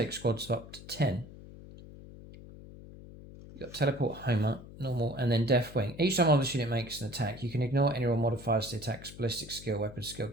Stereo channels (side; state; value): left; noise; hum, 16 dB below the sound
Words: squads of up to 10. You've got Teleport, Homer, normal, and then Deathwing. Each time one of this unit makes an attack, you can ignore any roll modifiers to the attack's ballistic skill, weapon skill